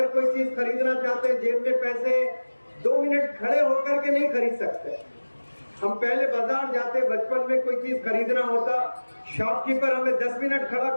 کوئی چیز خریدنا چاہتے ہیں، جیب میں پیسے 2 منٹ کھڑے ہو کر کے نہیں خرید سکتے. ہم پہلے بازار جاتے، بچپن میں کوئی چیز خریدنا ہوتا، شاپ کیپر ہمیں 10 منٹ کھڑا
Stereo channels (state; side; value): inverted; both; correlation -1.00